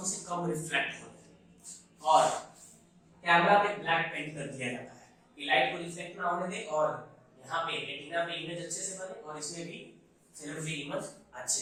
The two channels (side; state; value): both; identical; correlation 1.00